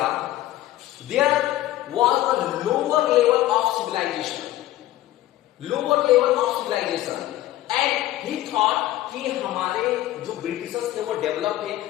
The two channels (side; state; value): right; quieter; 14.9 dB